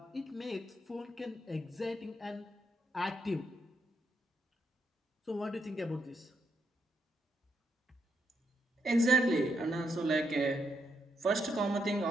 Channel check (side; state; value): both; normal; correlation 0.80